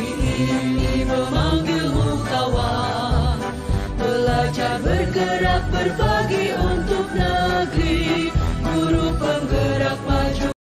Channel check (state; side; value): identical; both; correlation 1.00